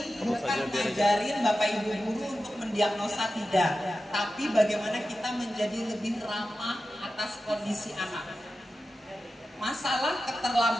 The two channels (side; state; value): both; normal; correlation 0.93